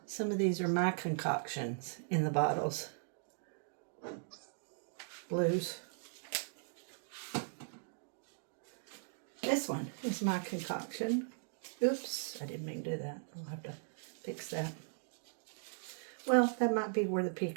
Some of these are my concoctions in the bottles. Blues. This one is my concoction. Oops, I didn't mean to do that. I'll have to fix that. Well, that might be where the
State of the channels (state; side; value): silent; left; digital silence